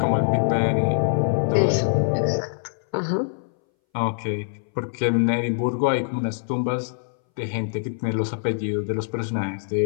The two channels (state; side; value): silent; right; 61 dB below the other